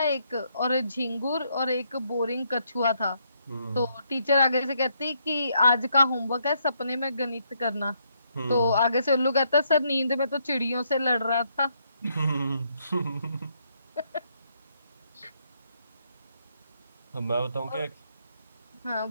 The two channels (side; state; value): both; inverted; correlation -0.74